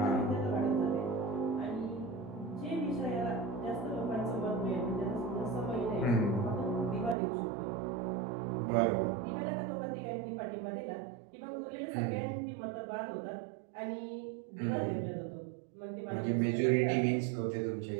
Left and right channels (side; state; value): left; drops out; at 7.2 s